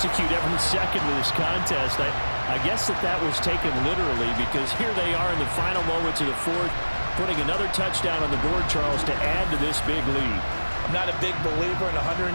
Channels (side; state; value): both; inverted; correlation -1.00